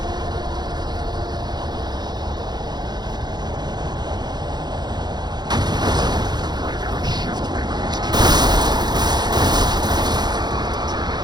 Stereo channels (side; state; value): left; late; 0.20 ms